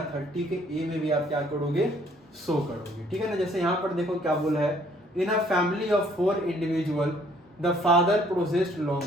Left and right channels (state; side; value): normal; both; correlation 0.62